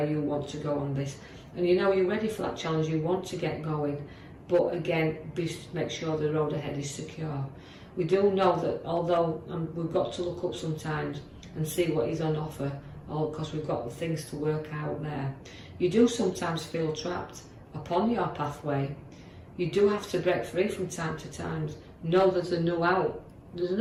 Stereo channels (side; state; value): both; identical; correlation 1.00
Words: you want to go on this. And you know you're ready for that challenge, you want to get going, but again, make sure the road ahead is secure. We do know that although we've got to look up sometimes and see what is on offer, because we've got things to work out there, you do sometimes feel trapped upon your pathway. You do have to break free from time to time. Know there's a new out. There's